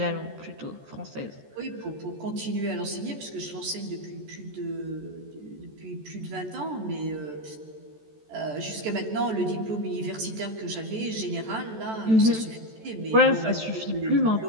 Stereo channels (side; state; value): left; late; 14 ms